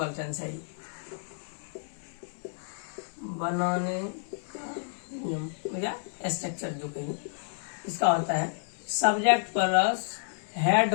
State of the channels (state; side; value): silent; right; digital silence